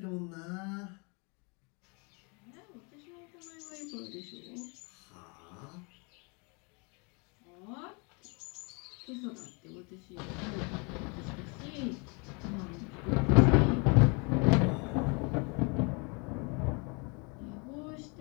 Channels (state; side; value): quieter; right; 32.3 dB